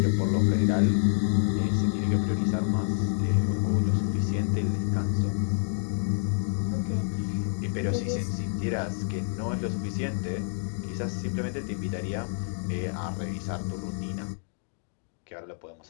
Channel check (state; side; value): silent; right; digital silence